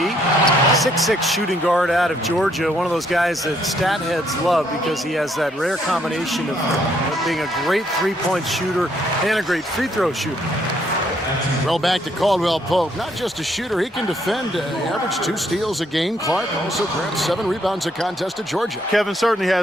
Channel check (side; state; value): both; normal; correlation 0.70